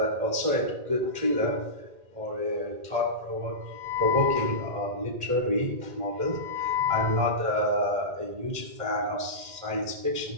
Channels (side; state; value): left; late; 1.8 ms